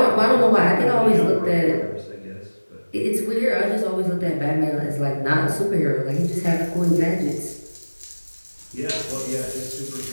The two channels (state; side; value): inverted; both; correlation -1.00